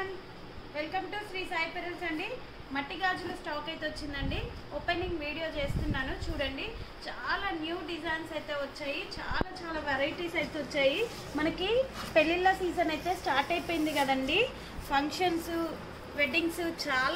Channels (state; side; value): identical; both; correlation 1.00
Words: everyone, welcome to Sri Sai Perils అండి. మట్టి గాజుల stock అయితే వచ్చిందండి. ఓపెనింగ్ వీడియో చేస్తున్నాను చూడండి. చాలా న్యూ డిజైన్స్ అయితే వచ్చాయి, చాలా వెరైటీస్ అయితే వచ్చాయి. మనకి పెళ్ళిళ్ళ సీజన్ అయితే స్టార్ట్ అయిపోయింది కదండి. ఫంక్షన్స్, వెడ్డింగ్స్